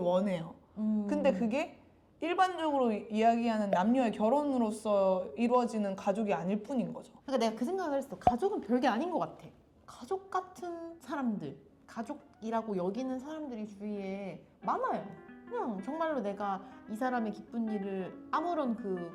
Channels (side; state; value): both; identical; correlation 1.00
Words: 근데 그게 일반적으로 이야기하는 남녀의 결혼으로서 이루어지는 가족이 아닐 뿐인 거죠. 그러니까 내가 그 생각을 했어. 가족은 별게 아닌 것 같아. 가족 같은 사람들, 가족이라고 여기는 사람들이 주위에 많아요. 그냥 정말로 내가 이 사람의 기쁜 일을 아무런